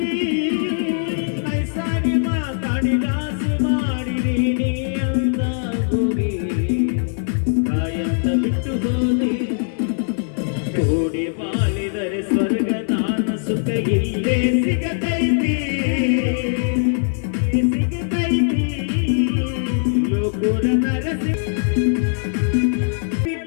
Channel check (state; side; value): silent; right; 65 dB below the other